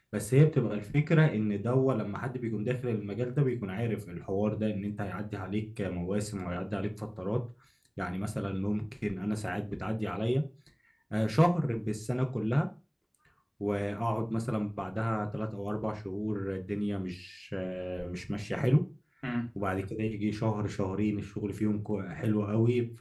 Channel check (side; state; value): both; identical; correlation 1.00